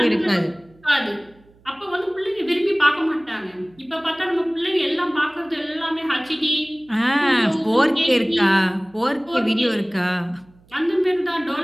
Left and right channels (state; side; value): noise; right; hum, 30 dB below the sound